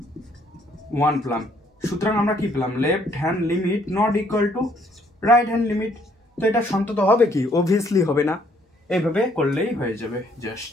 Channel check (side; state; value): both; normal; correlation 0.66